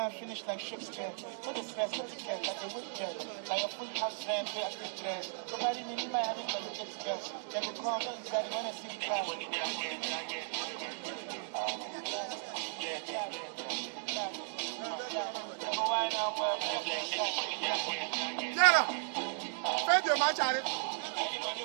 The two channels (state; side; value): silent; left; digital silence